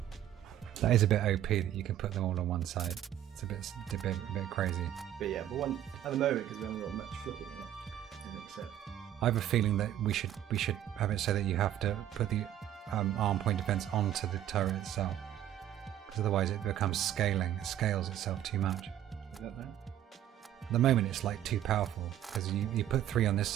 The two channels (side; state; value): left; quieter; 11.5 dB